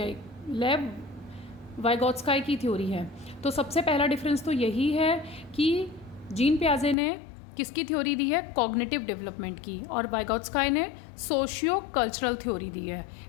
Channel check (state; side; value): drops out; right; at 7.0 s